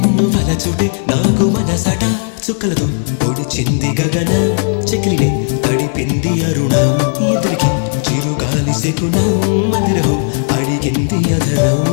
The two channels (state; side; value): silent; right; 61 dB below the other